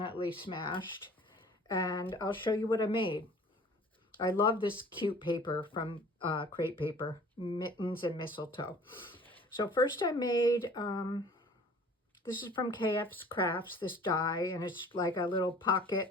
smashed. And I'll show you what I made. I love this cute paper from crepe paper, mittens and mistletoe. So first I made, this is from KF's Crafts, this die, and it's like a little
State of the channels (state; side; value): normal; both; correlation 0.49